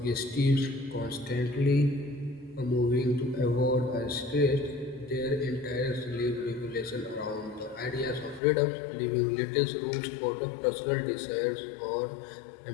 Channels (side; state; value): right; drops out; at 8.4 s